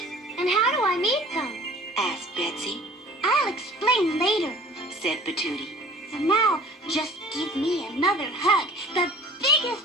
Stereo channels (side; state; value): both; normal; correlation 0.47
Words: And how do I meet them? asked Betsy. I'll explain later. Said Patootie. For now, just give me another hug, the